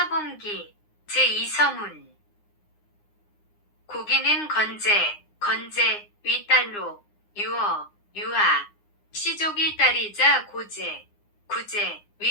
제2서문. 고기는 건제, 윗딸로, 유하, 시족의 딸이자 구제,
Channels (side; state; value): right; late; 9.7 ms